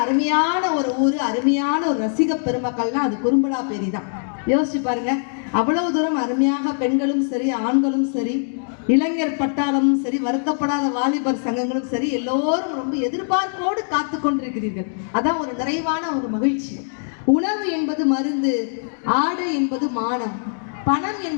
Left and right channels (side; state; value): right; silent; digital silence